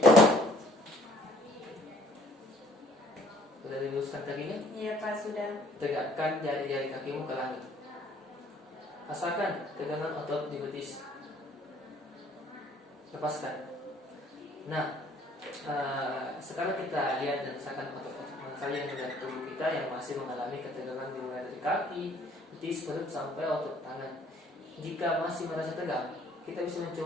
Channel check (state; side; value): normal; both; correlation 0.58